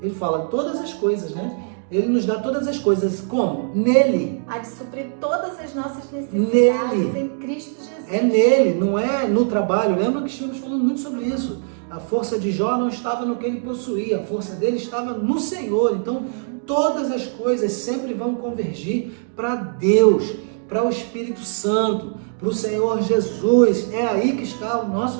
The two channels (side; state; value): left; silent; digital silence